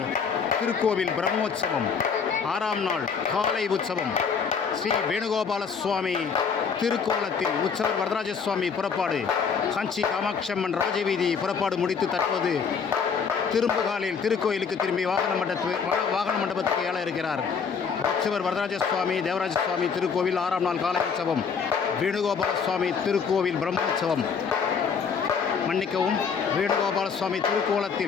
திருக்கோவில் பிரம்மோற்சவம் 6ஆம் நாள் காலை உற்சவம் ஸ்ரீ வேணுகோபால சுவாமி திருக்கோலத்தில் உற்சவர் வரதராஜ சுவாமி புறப்பாடு காஞ்சி காமாட்சியம்மன் ராஜவீதி புறப்பாடு முடித்து தற்போது திரும்புகாலில் திருக்கோயிலுக்கு திரும்பி வாகன மண்டபத்துக்கு ஏழ இருக்கிறார். உற்சவர் வரதராஜ சுவாமி தேவராஜ சுவாமி திருக்கோவில் 6ஆம் நாள் காலை உற்சவம் வேணுகோபால சுவாமி திருக்கோவில் பிரம்மோற்சவம் மன்னிக்கவும் வேணுகோபால சுவாமி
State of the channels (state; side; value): quieter; right; 6.1 dB